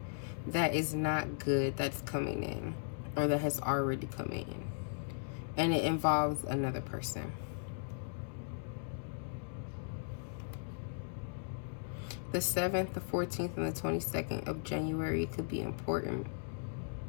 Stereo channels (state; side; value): silent; right; digital silence